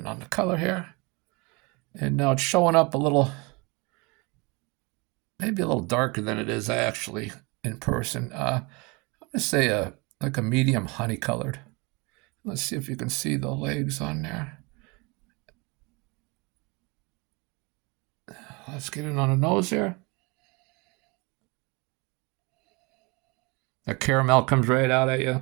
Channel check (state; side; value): quieter; left; 28.0 dB